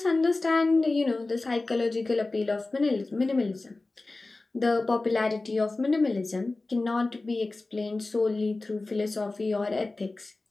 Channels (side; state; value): right; quieter; 3.3 dB